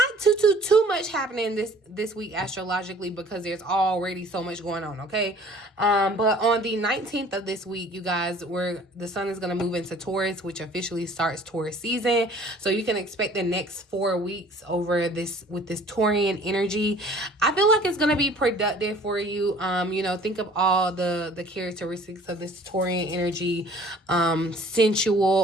too much happening this week astrologically because there's already so much going on, okay? But on the 19th of this week, you guys, the sun is going to move into Taurus, which officially starts Taurus season. So you can expect the next 4 weeks with this Taurian energy. I feel like it's going to be productive for you. Think of all the characteristics of this Taurian energy,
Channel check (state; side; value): normal; both; correlation 0.52